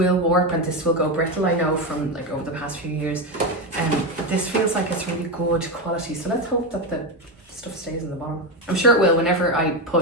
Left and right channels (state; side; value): normal; both; correlation 0.13